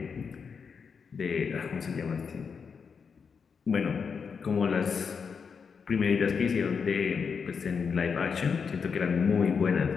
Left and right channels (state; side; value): quieter; right; 5.9 dB